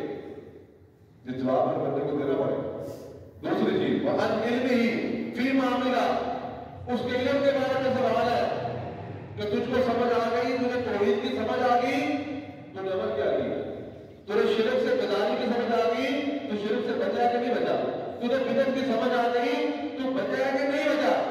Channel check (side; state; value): both; identical; correlation 1.00